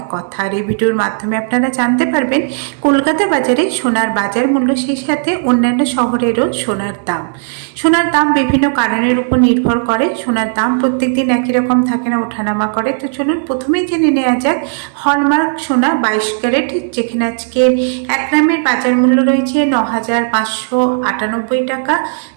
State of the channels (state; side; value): silent; left; digital silence